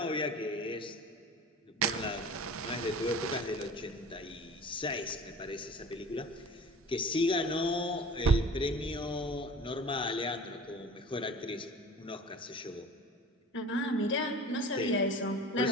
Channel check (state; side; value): normal; both; correlation 0.41